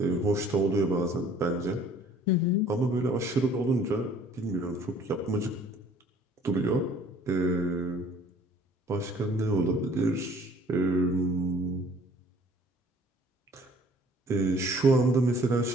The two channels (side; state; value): both; normal; correlation 0.54